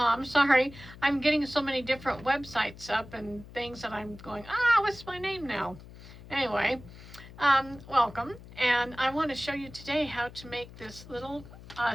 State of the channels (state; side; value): noise; left; hum, 17 dB below the sound